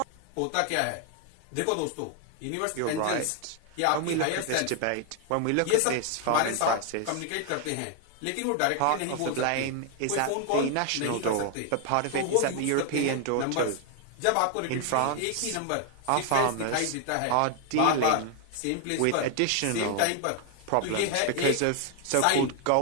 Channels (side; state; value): both; different; correlation 0.00